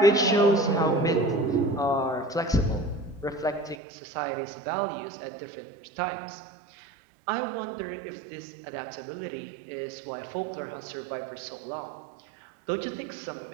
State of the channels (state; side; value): drops out; left; at 3.8 s